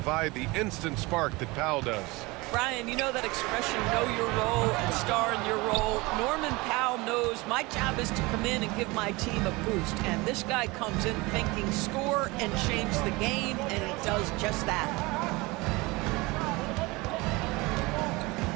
the instant spark that Powell does. Brian, you know that expression, know your role and star in your role. Norman Powell knows my job is to come in and give my team a boost. And this guy comes in thinking score and change the game, and he does just that.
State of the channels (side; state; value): left; quieter; 23.5 dB